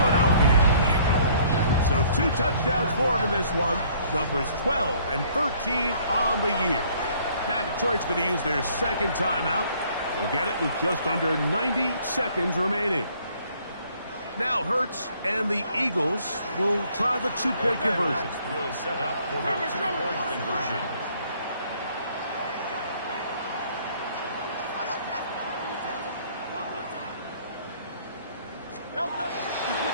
So 2 touchdowns for him in this one. Numbers 12 and 13 on the year. Now Detroit's going to use their second timeout. They'll get it with just under 90 seconds remaining. Now Hurts and the Eagles will try the two-point conversion. Will set up for the two-point conversion.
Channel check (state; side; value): inverted; both; correlation -0.60